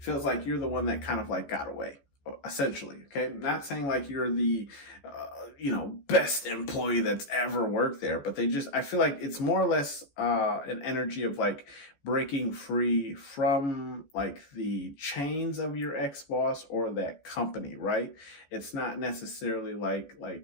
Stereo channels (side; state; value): right; late; 14 ms